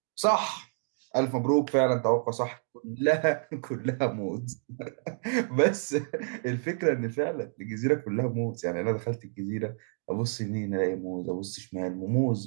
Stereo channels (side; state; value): left; silent; digital silence